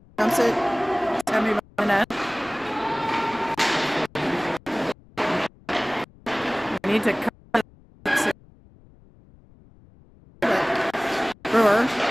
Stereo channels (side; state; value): left; noise; rumble, 26 dB below the sound